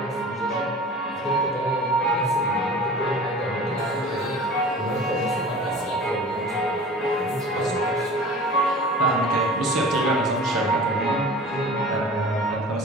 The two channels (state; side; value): normal; both; correlation 0.40